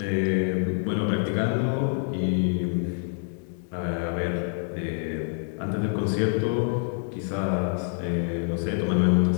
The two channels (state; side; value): silent; right; digital silence